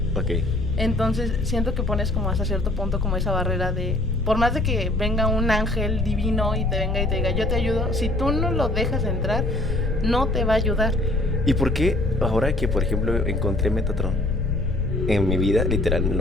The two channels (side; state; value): left; noise; rumble, 2 dB below the sound